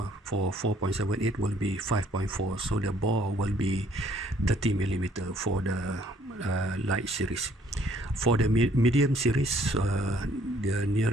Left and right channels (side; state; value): both; normal; correlation 0.63